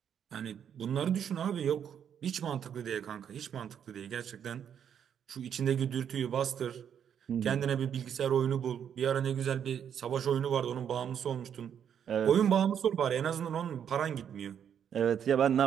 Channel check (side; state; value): left; quieter; 8.6 dB